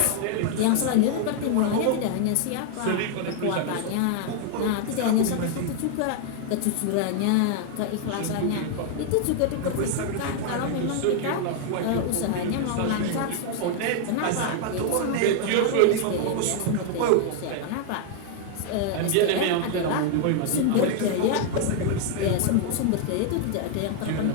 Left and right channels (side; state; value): both; different; correlation 0.00